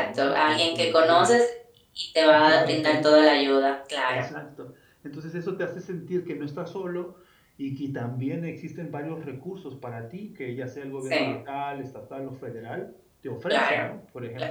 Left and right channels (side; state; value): both; identical; correlation 1.00